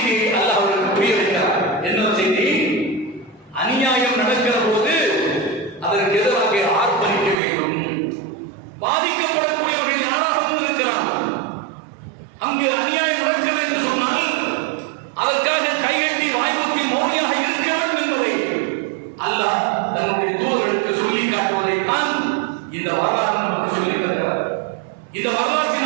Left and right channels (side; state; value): left; drops out; at 7.4 s